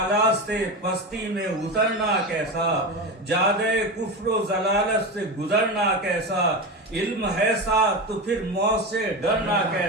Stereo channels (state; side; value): normal; both; correlation 0.21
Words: سے پستی میں اترنا کیسا، جادے کفر و ضلالت سے گزرنا کیسا، علم ہے ساتھ تو پھر موت سے ڈرنا